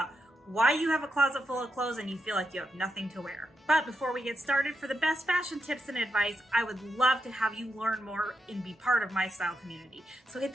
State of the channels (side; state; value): both; normal; correlation 0.84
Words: why you have a closet full of clothes and you feel like you have nothing to wear. But before we get started, for the best fashion tips and advice, I would love to have you learn more and be part of my style community. So hit